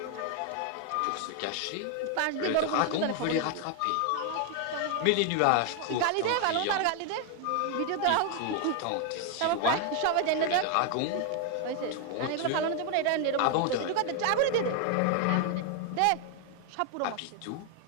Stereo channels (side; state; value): both; different; correlation 0.00